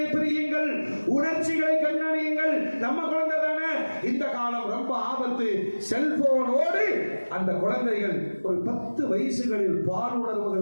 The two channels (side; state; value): both; inverted; correlation -1.00